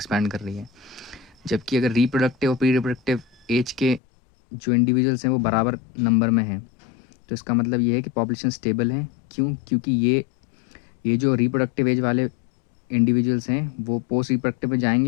कर रही है। जबकि अगर रिप्रोडक्टिव और प्री रिप्रोडक्टिव एज के जो इंडिविजुअल्स हैं वो बराबर नंबर में हैं, तो इसका मतलब ये है कि पॉपुलेशन स्टेबल है। क्यों? क्योंकि ये जो रिप्रोडक्टिव एज वाले इंडिविजुअल्स हैं वो पोस्ट रिप्रोडक्टिव में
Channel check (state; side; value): drops out; right; at 4.0 s